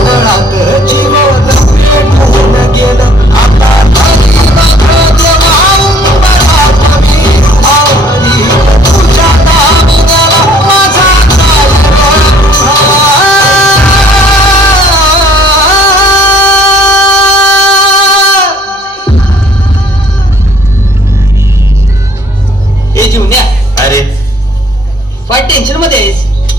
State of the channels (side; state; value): both; normal; correlation 0.58